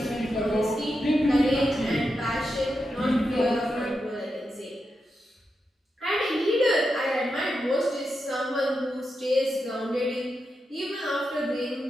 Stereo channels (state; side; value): normal; both; correlation 0.87